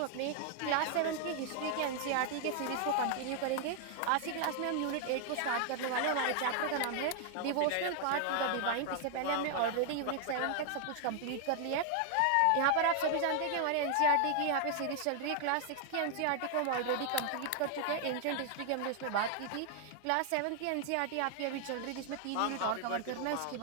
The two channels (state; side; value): different; both; correlation 0.00